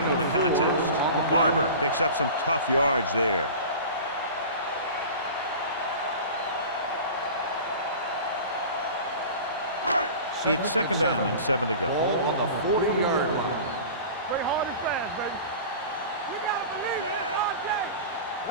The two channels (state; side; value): inverted; both; correlation -0.36